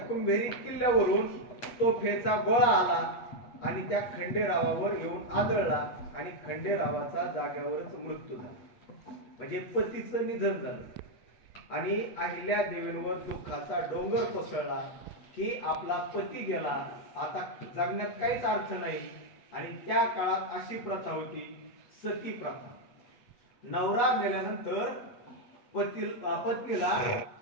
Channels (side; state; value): right; late; 8.4 ms